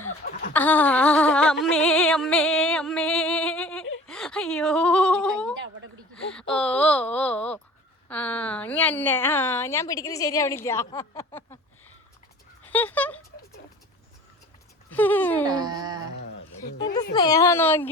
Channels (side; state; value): both; normal; correlation 0.45